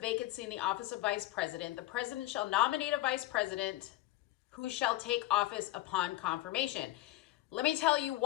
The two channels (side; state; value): right; quieter; 17.4 dB